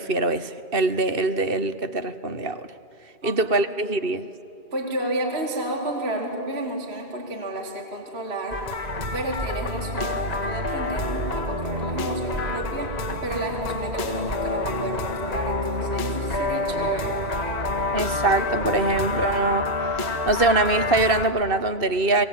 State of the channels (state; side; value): late; left; 2.6 ms